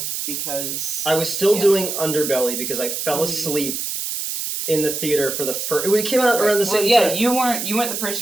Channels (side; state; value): right; noise; hiss, 4 dB below the sound